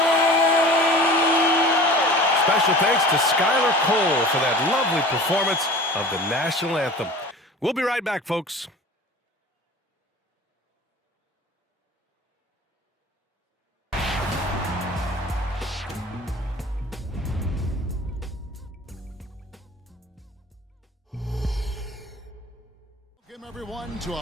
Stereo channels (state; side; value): normal; both; correlation 0.41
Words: Special thanks to Skylar Cole for that lovely performance of the national anthem. We'll be right back, folks. Welcome, everyone, to